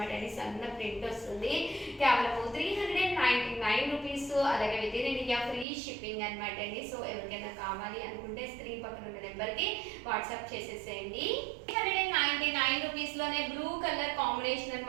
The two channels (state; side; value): drops out; left; at 5.7 s